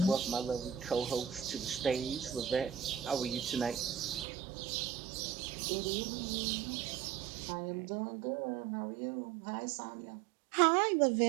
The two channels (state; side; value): drops out; left; at 4.2 s